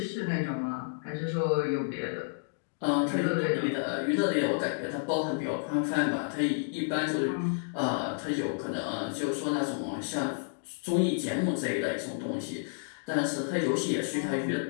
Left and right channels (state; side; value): silent; right; digital silence